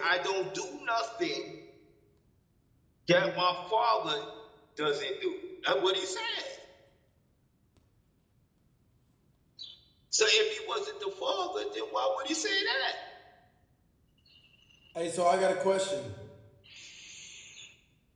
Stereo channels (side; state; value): both; identical; correlation 1.00